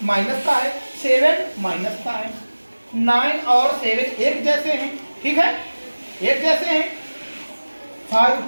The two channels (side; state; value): both; inverted; correlation -1.00